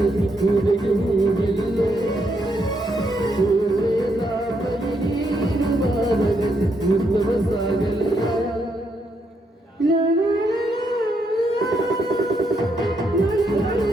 ಕುಡಿಯುವುದಿಲ್ಲ ಓದಗದ ಪರಿಣೀನು ಬಾರದಲ್ಲಿ ಉತ್ತಮ ಸಾಗಲ್ಲ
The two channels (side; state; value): both; normal; correlation 0.77